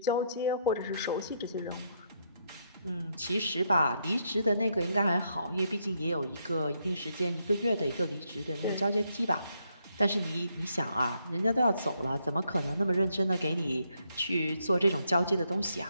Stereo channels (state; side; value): inverted; both; correlation -0.76